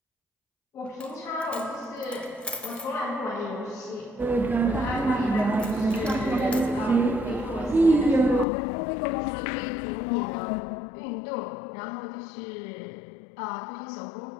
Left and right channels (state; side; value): drops out; right; at 8.5 s